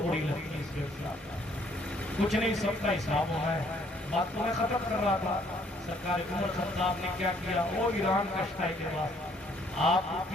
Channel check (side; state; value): both; normal; correlation 0.64